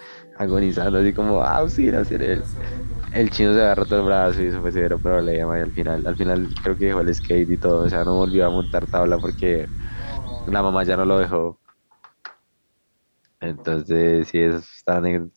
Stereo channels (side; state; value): both; inverted; correlation -1.00